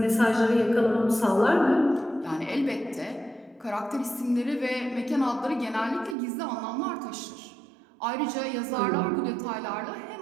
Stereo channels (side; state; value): left; drops out; at 6.2 s